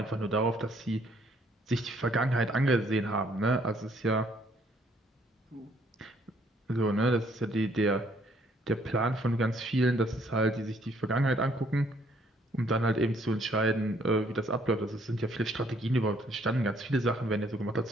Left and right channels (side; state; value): both; normal; correlation 0.65